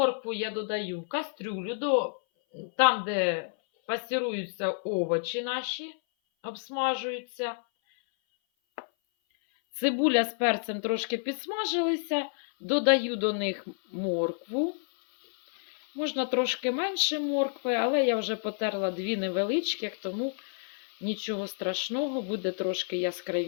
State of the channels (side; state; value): right; silent; 57 dB below the other